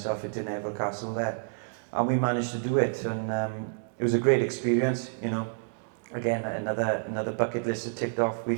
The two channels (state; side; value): silent; left; digital silence